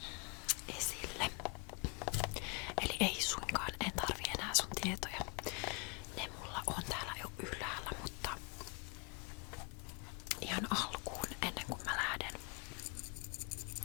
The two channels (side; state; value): right; quieter; 30.8 dB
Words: esille. Eli ei suinkaan, en tarvii enää sun tietoja. Ne mulla on täällä jo ylhäällä, mutta ihan alkuun, ennen kuin mä lähden